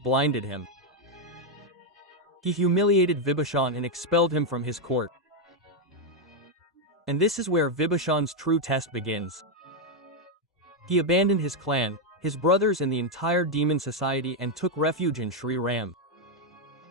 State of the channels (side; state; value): both; normal; correlation 0.01